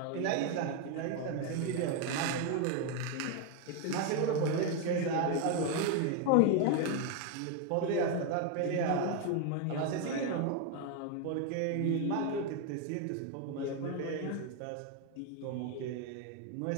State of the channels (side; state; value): both; different; correlation 0.01